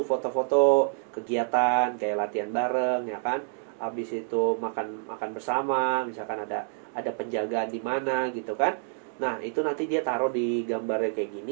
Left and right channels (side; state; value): left; silent; digital silence